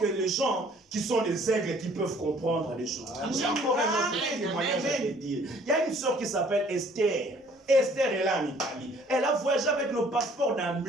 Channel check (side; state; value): both; normal; correlation 0.57